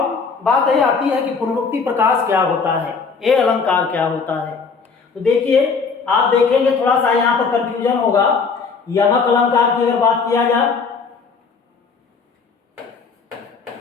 बात यह आती है कि पुनरुक्ति प्रकाश क्या होता है, ये अलंकार क्या होता है। तो देखिए, आप देखेंगे थोड़ा सा यहाँ पर कंफ्यूजन होगा। यमक अलंकार की अगर बात किया जाए,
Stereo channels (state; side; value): quieter; right; 5.1 dB